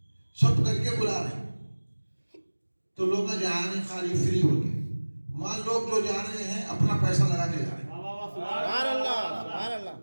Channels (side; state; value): both; inverted; correlation -1.00